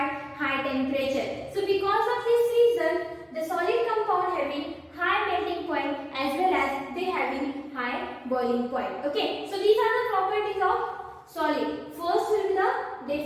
high temperature. So because of this reason, the solid compound having high melting point as well as they having high boiling point. Okay, so these are the properties of solid. First will be the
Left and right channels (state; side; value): identical; both; correlation 1.00